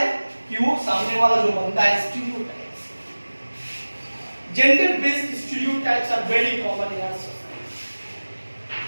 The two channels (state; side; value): inverted; both; correlation -1.00